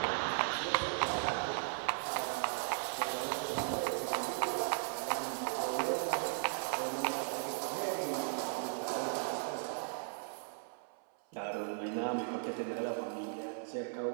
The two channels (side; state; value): left; silent; 53 dB below the other